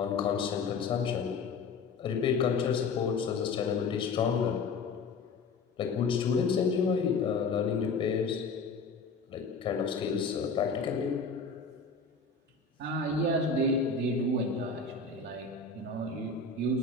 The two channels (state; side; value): quieter; right; 4.4 dB